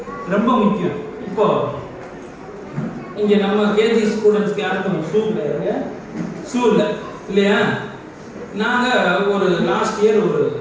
ரொம்ப முக்கியம். இப்போ இங்க நம்ம கேஜி ஸ்டூடெண்ட்ஸ்க்கு யாருக்கும் ஷூ கிடையாது, ஷூ இல்லை இல்லையா? நாங்க ஒரு லாஸ்ட் இயர் ஒரு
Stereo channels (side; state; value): both; identical; correlation 1.00